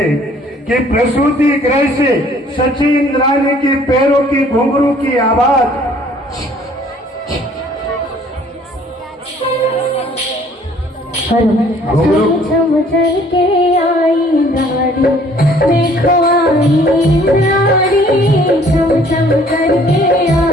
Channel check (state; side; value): normal; both; correlation 0.57